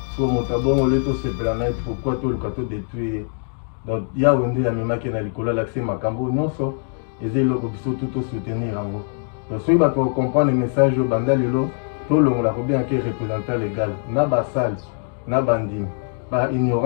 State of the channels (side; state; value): right; silent; 58 dB below the other